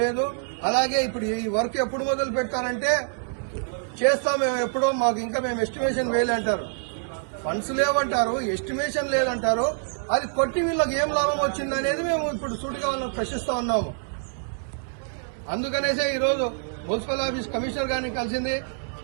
లేదు. అలాగే ఇప్పుడు ఈ వర్క్ ఎప్పుడు మొదలు పెడతారంటే చేస్తాం మేము ఎప్పుడో, మాకు ఇంకా మేము ఎస్టిమేషన్ వేయాలంటారు. ఫండ్స్ లేవంటారు, ఎస్టిమేషన్ లేదంటారు. అది కొట్టి వీళ్ళకి ఏం లాభం వచ్చింది అనేది మేము ఇప్పుడు సూటిగా వాళ్ళకి ప్రశ్నిస్తా ఉన్నాము. అందుకనేసే ఈరోజు మున్సిపల్ ఆఫీస్ కమిషనర్ గారిని కలిసింది.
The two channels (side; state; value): left; silent; 61 dB below the other